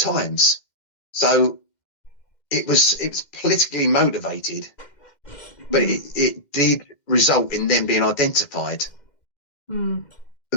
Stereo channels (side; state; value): right; late; 2.1 ms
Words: So it was politically motivated, but it did result in them being identified. And